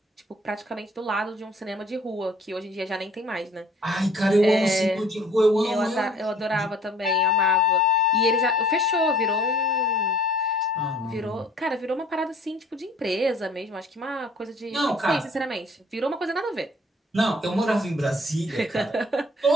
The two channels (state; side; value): normal; both; correlation 0.54